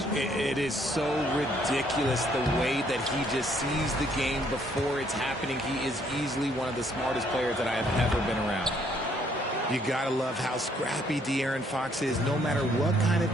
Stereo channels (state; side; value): normal; both; correlation 0.67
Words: It is so ridiculous the way that he just sees the game before it's happening. He is easily one of the smartest players that I have ever been around. You gotta love how scrappy De'Aaron Fox is. No matter what kind of